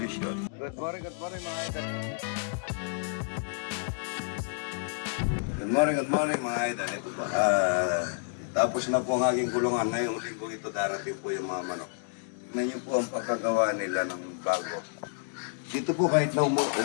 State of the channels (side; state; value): right; silent; digital silence